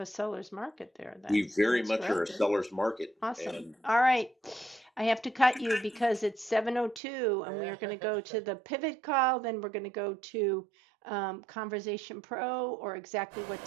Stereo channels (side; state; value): left; drops out; at 7.0 s